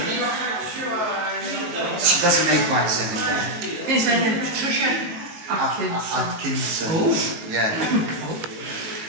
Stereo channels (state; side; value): late; left; 19 ms